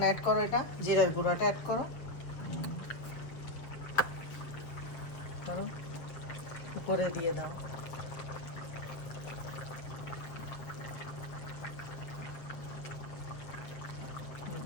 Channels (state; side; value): late; right; 7.3 ms